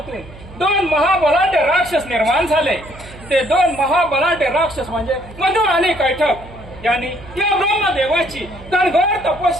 दोन महाबलाढ्य राक्षस निर्माण झाले. ते दोन महाबलाढ्य राक्षस म्हणजे मधु आणि कैठप यांनी या ब्रह्मदेवाची कणघोर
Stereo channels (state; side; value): noise; right; hum, 18 dB below the sound